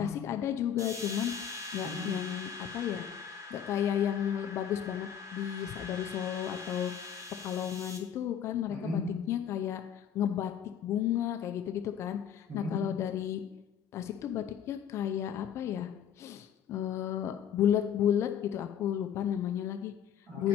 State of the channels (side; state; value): right; quieter; 8.9 dB